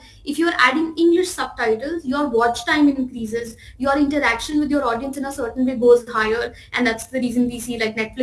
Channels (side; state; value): both; identical; correlation 1.00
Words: if you're adding English subtitles, your watch time increases, your interaction with your audience in a certain way goes higher. And that's the reason we see like